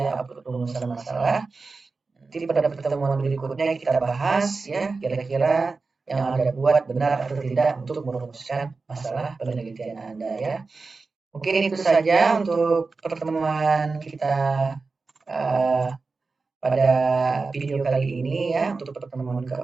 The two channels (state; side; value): quieter; left; 4.1 dB